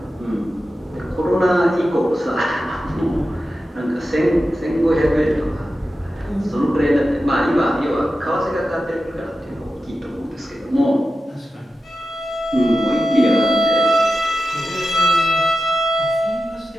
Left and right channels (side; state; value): both; normal; correlation 0.92